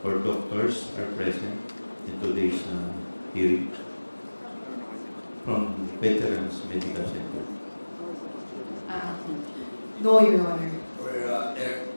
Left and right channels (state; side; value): inverted; both; correlation -1.00